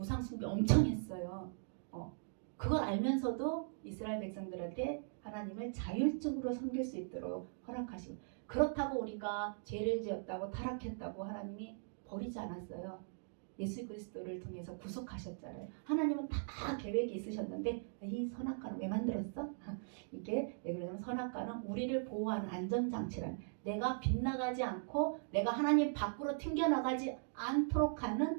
엄청 했어요. 그걸 알면서도 이스라엘 백성들한테 하나님을 자율적으로 섬길 수 있도록 허락하시고 그렇다고 우리가 죄를 지었다고 타락했다고 하나님이 버리지 않았어요. 예수 그리스도를 통해서 구속하셨잖아요. 하나님은 다 계획이 있으셨는데 이 선악과는 왜 만들었어? 이게 왜 그러냐면 선악과는 우리를 보호하는 안전장치란 내가 빗나가지 않고 내가 하나님 밖으로 튕겨나가지 않도록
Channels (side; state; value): left; silent; digital silence